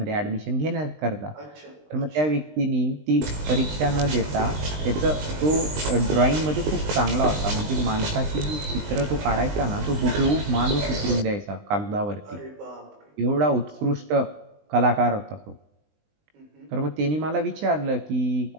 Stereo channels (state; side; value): late; left; 20 ms